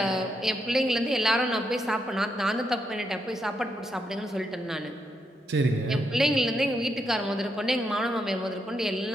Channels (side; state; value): both; normal; correlation 0.80